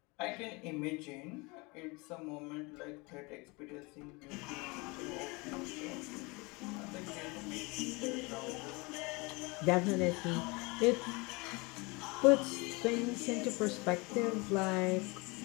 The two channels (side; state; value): right; quieter; 26.7 dB